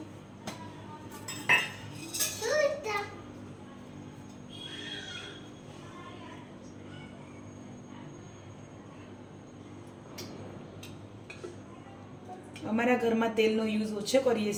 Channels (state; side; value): identical; both; correlation 1.00